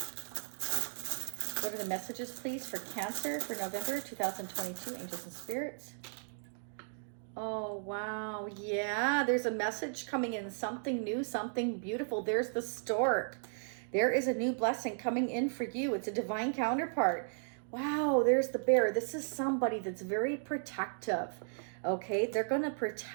What are the messages, please, for Cancer for November 2022, angels and spirits? Oh, wow. Yeah, there's a message coming in, something new, something beautiful. There's the stork. There is a new blessing coming in for you. It's a divine counterpart. Wow, there's the bear. This is somebody that's very protective. Okay, they're going to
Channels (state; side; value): silent; left; digital silence